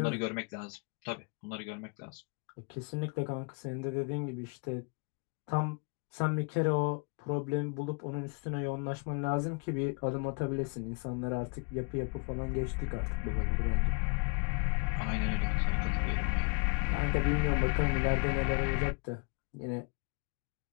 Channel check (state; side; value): quieter; right; 34.2 dB